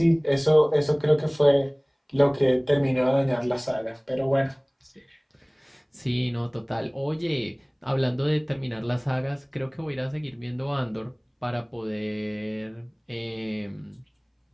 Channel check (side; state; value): both; identical; correlation 1.00